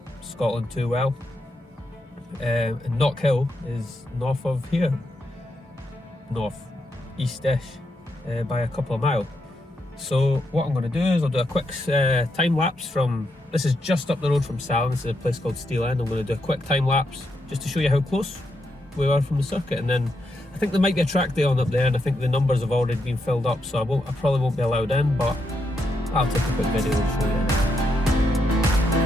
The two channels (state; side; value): normal; both; correlation 0.81